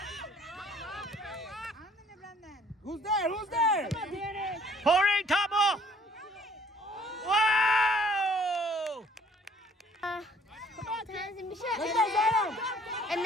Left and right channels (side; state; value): both; normal; correlation 0.58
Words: Who's there? Who's there? Come on, Danny. 펑링 타보 와